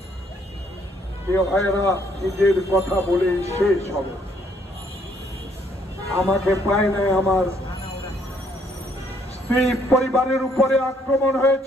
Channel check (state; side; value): normal; both; correlation 0.67